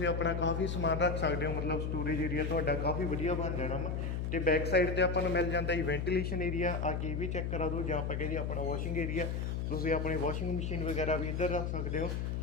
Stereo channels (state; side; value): noise; left; hum, 1 dB below the sound